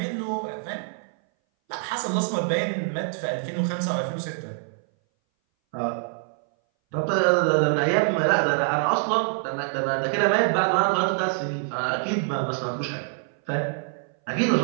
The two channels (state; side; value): silent; left; 59 dB below the other